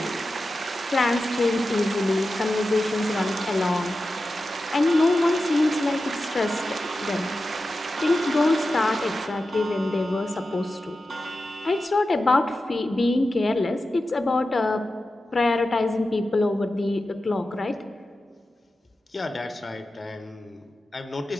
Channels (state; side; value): normal; both; correlation 0.92